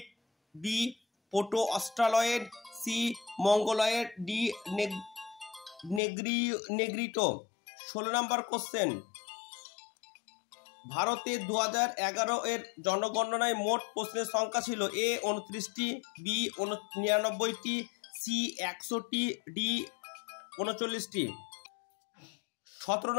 B proto Australoid, C Mongoloid, D Negrito. 16 নম্বর কোশ্চেন, ভারতে 2011 এর জনগণনায় মোট প্রশ্নের সংখ্যা ছিল? এ 29টি, বি 99টি, সি 100টি, ডি 39টি। 17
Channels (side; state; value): right; drops out; at 6.0 s